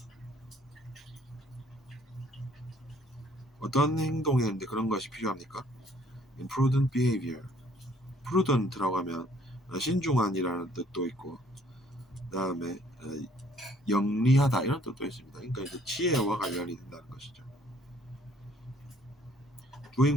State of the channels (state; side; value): normal; both; correlation 0.61